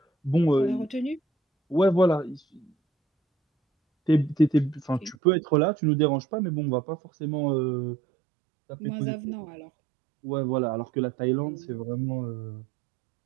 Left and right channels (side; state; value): left; drops out; at 5.2 s